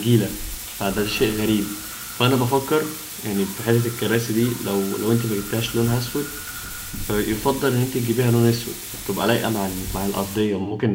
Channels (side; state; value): both; identical; correlation 1.00